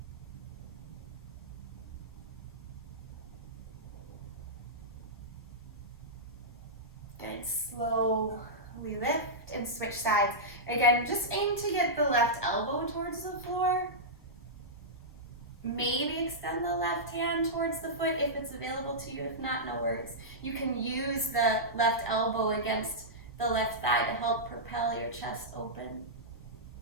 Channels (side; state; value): both; normal; correlation -0.12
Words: Good, slowly lift and switch sides. Again, just aim to get the left elbow towards the floor. Maybe extend the left hand towards the foot if it's available to you. If not, no worries. You can use the left elbow against the left thigh to help propel your chest open.